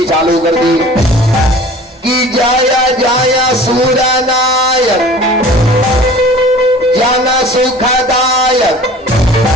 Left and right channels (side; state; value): both; normal; correlation 0.44